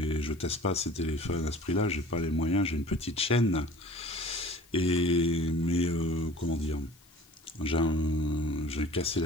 je teste pas ces téléphones à ce prix-là, j'ai pas les moyens, j'ai une petite chaîne. Mais comment dire, j'ai cassé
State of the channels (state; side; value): noise; left; hiss, 29 dB below the sound